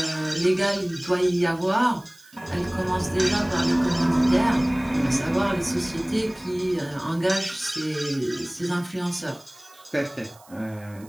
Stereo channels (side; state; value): right; noise; hiss, 26 dB below the sound